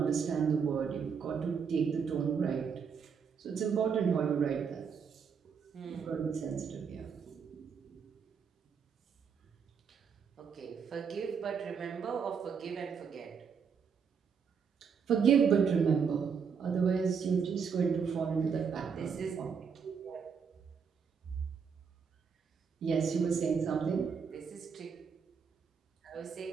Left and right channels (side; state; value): left; quieter; 6.4 dB